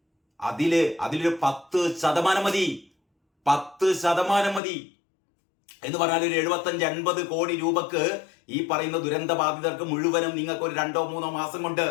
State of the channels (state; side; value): drops out; right; at 4.6 s